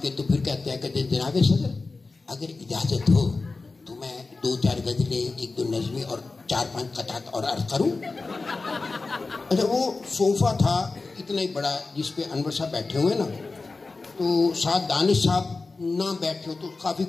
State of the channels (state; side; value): quieter; right; 3.8 dB